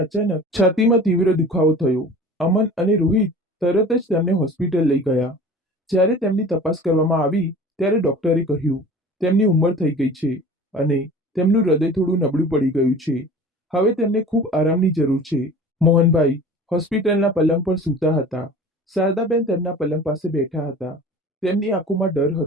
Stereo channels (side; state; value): both; normal; correlation 0.41